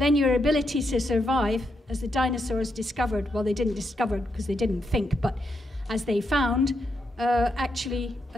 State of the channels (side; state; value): both; normal; correlation 0.82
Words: your ability to survive, as the dinosaurs discovered, well, they didn't discover because they didn't think, but as they found, actually